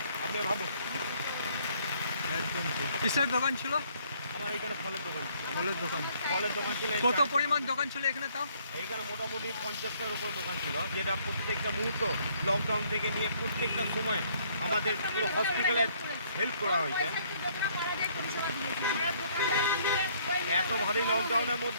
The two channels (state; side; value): inverted; both; correlation -0.64